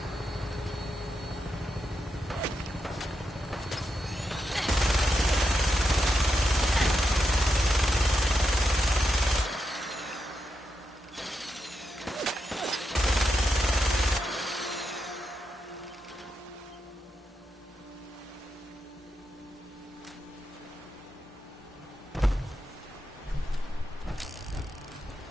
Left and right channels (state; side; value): normal; both; correlation 0.85